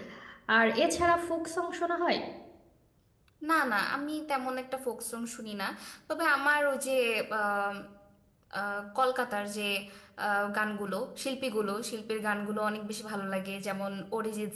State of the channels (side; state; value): both; identical; correlation 1.00